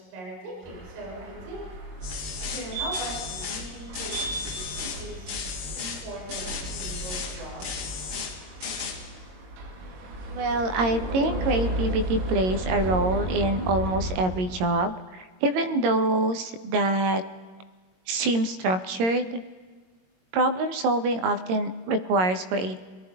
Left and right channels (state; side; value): late; left; 22 ms